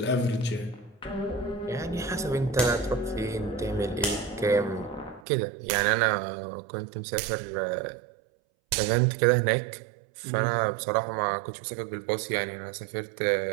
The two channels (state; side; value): drops out; left; at 5.2 s